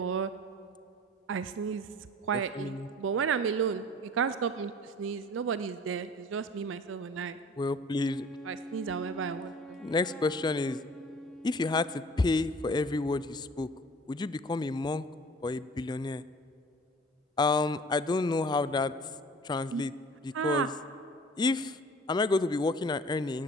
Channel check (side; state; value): both; normal; correlation 0.46